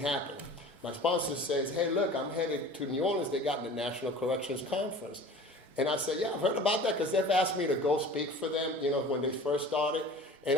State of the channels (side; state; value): both; normal; correlation 0.41